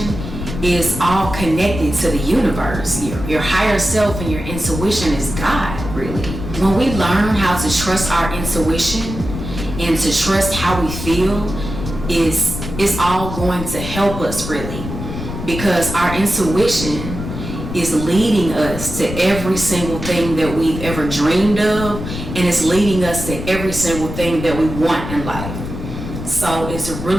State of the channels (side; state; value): left; noise; rumble, 7 dB below the sound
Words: is all connected to the universe. Your higher self and your intuition is God, really. When we learn how to trust our intuition and to trust how we feel, is all going to help us really, because our intuition is leading us to every single thing that we've ever dreamed of, and it's leading us to every single thing that we want in life. So it's